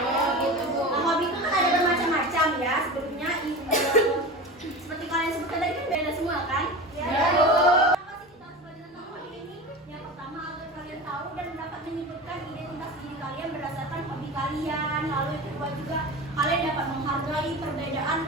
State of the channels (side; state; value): both; normal; correlation 0.30